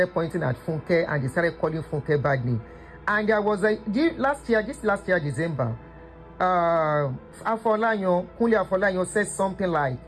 pointing at Funke and they started calling Funke bad name. And there was this last year, December, Kunle Afolayan said something like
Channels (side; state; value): both; identical; correlation 1.00